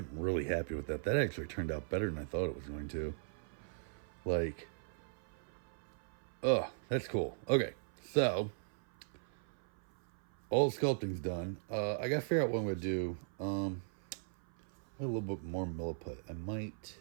really happy with that. That actually turned out better than I thought it was going to. Like, oh, that's cool. Okay, so all the sculpting's done. I gotta figure out what I'm gonna do. A little bit more milliput. I might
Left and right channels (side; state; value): left; silent; 52 dB below the other